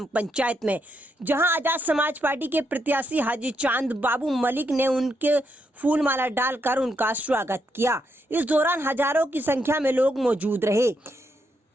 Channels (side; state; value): both; normal; correlation 0.79